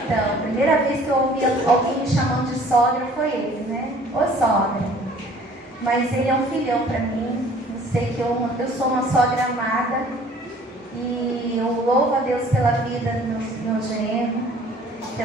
Então, a primeira vez que eu ouvi alguém me chamando de sogra foi ele, né? Ô sogra. Mas ele é um filhão para mim. Eu sei que eu sou uma sogra amada. E eu louvo a Deus pela vida do meu genro,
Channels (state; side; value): normal; both; correlation 0.53